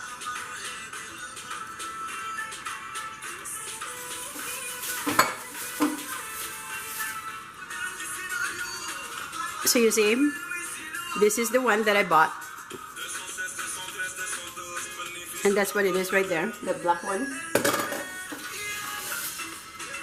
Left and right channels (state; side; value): identical; both; correlation 1.00